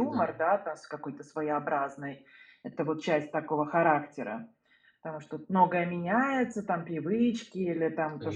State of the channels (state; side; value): identical; both; correlation 1.00